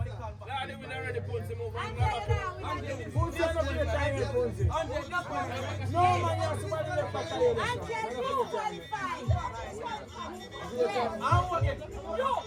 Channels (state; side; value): identical; both; correlation 1.00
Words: they will already put some over. No man, you're somebody left back there. No.